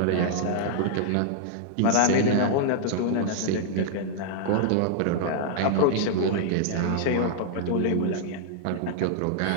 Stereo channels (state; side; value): different; both; correlation -0.01